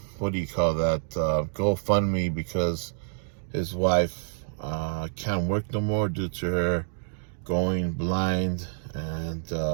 what do you call that, GoFundMe, because his wife can't work no more due to her going blind, and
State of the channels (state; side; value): silent; left; digital silence